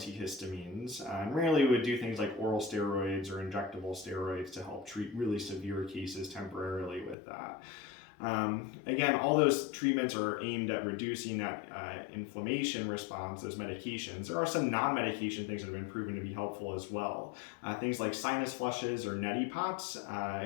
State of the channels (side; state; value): right; drops out; at 7.2 s